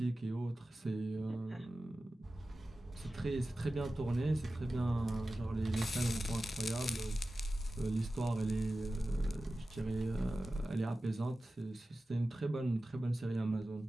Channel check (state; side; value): normal; both; correlation 0.95